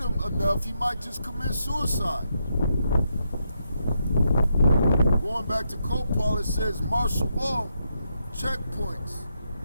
enough, he might just commit suicide. Going back to Copal, it says martial law, checkpoints,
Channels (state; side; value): inverted; both; correlation -0.81